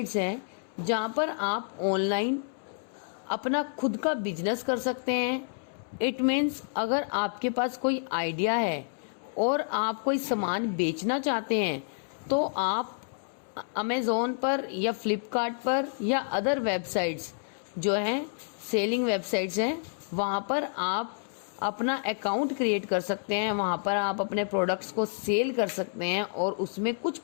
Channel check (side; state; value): right; silent; 58 dB below the other